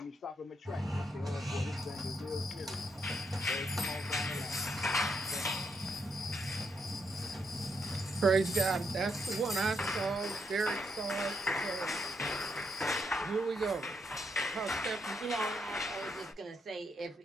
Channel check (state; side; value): normal; both; correlation 0.78